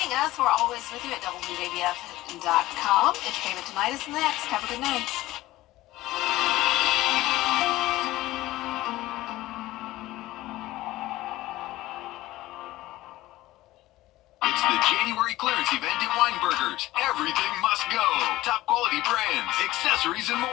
us. We're always with you at WJBF.com. Entertainment Tonight is next. Have a good night. It's the January clearance event at Weinberger's. Everything must go. Top quality brands, accessories, and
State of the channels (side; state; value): right; quieter; 17.0 dB